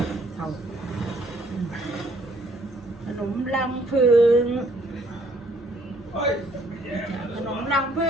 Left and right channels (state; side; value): noise; right; hum, 27 dB below the sound